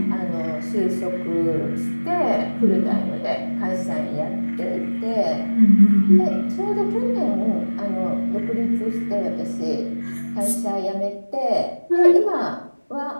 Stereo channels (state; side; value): inverted; both; correlation -1.00